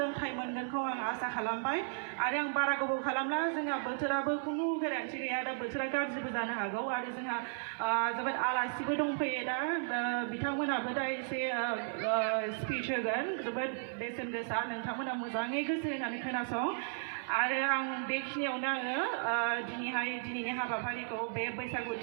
मोनगोनखौ आं आसा खालामबाय। आरो आं बारा गोबाव खालामला, जोंहा बोथोराबो खुनु गेरेन्थि गैया, दा बोथोरा गाज्रिबो जानो हागौ। आरो जोंहा जोबोद आलासिबो दंफैयो दा बिथांमोनाबो दा एसे स्पिच होगोन जोबोद बेसेन गोसा, नोंथांमोना मोजाङै गोसो होनानै खोनासं। आरो आं बेखिनियावनो आङो दिनैनि हाबाफारिखौ बे बैसागु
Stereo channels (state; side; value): silent; left; digital silence